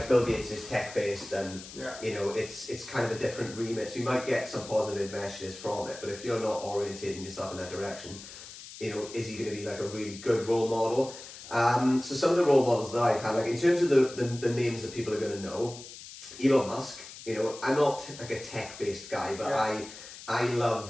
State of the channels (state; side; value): noise; left; hiss, 14 dB below the sound